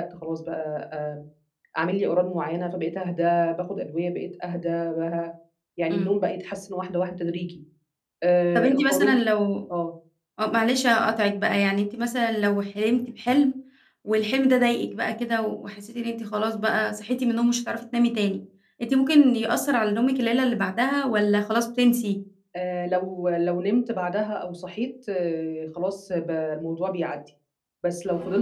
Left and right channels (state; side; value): identical; both; correlation 1.00